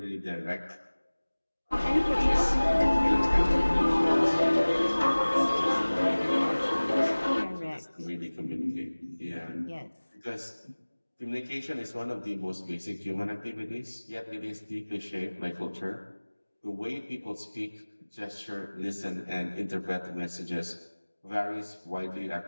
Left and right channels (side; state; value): both; inverted; correlation -1.00